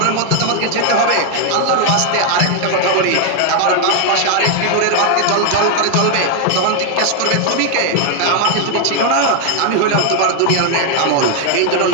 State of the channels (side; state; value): both; different; correlation 0.01